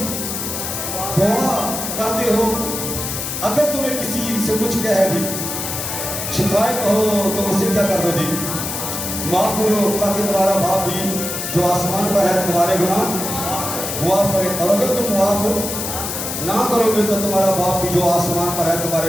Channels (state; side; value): noise; left; hiss, 4 dB below the sound